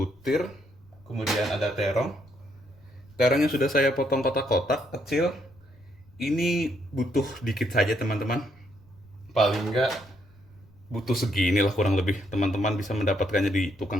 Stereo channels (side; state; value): left; noise; rumble, 28 dB below the sound